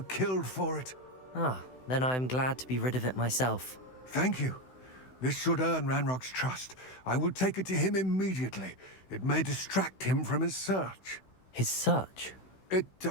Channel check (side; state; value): right; late; 16 ms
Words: killed for it. Ah, then I'm glad to be rid of it myself. Thank you. This should earn Ranrock's trust. I will take it to him immediately. It may distract him from his search. His search?